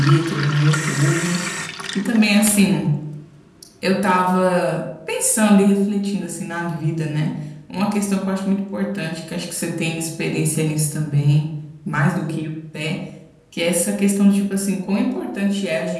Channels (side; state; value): both; identical; correlation 1.00